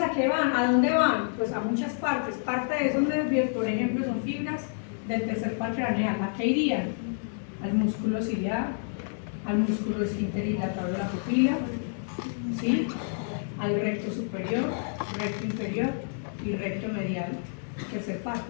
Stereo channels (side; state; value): right; silent; digital silence